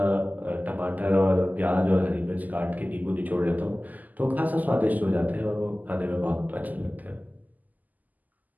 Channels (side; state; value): left; late; 0.081 ms